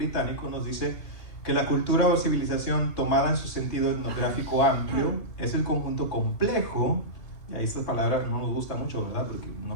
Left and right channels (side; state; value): right; late; 2.8 ms